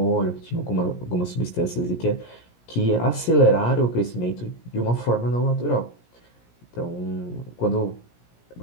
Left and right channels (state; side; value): late; right; 17 ms